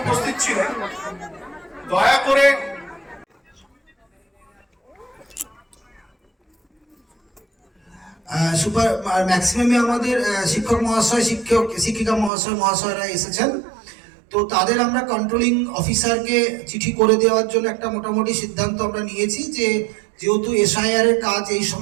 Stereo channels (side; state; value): left; drops out; at 12.3 s